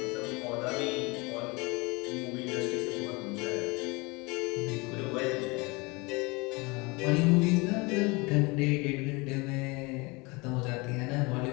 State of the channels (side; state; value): right; quieter; 26.1 dB